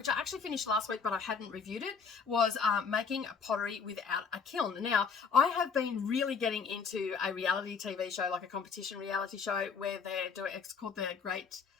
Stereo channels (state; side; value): quieter; right; 5.8 dB